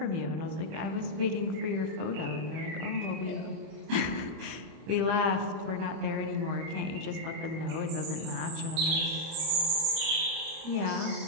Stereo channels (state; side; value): late; left; 26 ms